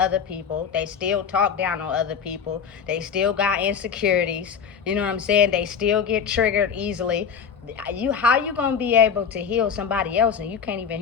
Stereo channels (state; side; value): quieter; right; 6.9 dB